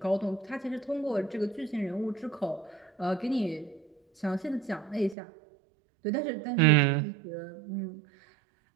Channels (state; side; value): drops out; left; at 5.2 s